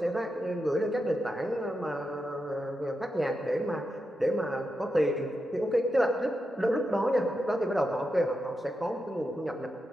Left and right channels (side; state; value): both; normal; correlation 0.87